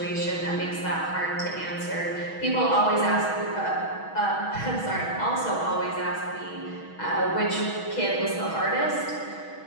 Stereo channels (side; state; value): right; late; 6.2 ms